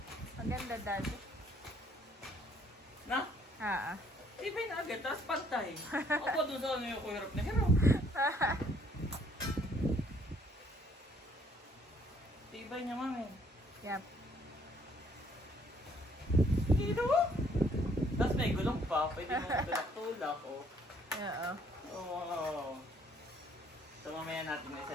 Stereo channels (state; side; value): normal; both; correlation 0.64